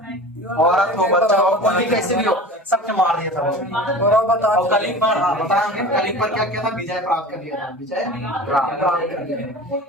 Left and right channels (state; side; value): normal; both; correlation 0.36